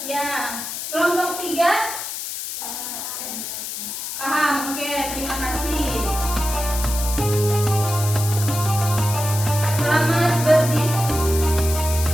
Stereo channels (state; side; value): noise; left; hiss, 6 dB below the sound